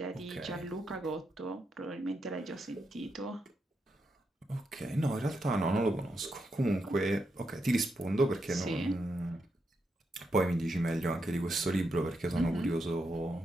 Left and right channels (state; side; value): normal; both; correlation 0.83